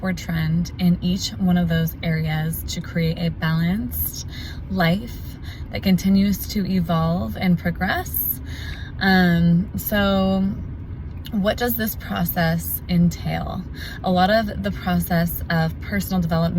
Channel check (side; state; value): both; identical; correlation 1.00